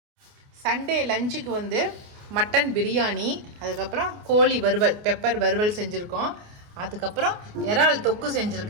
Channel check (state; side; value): late; left; 29 ms